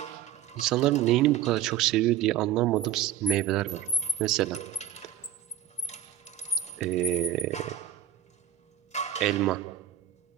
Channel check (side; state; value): left; quieter; 10.6 dB